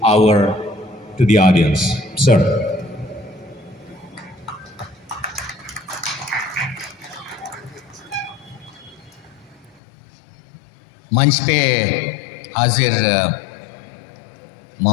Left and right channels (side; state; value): right; drops out; at 9.8 s